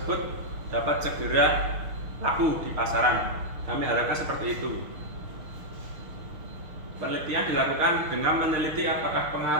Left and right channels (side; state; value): left; late; 6.5 ms